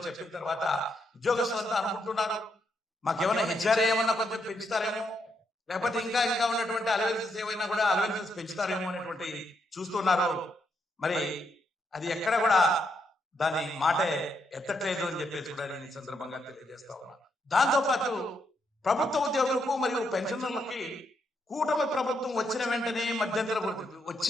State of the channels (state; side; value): normal; both; correlation 0.78